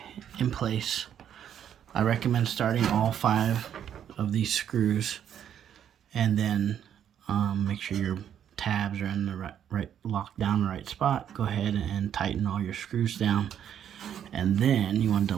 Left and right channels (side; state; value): left; quieter; 9.5 dB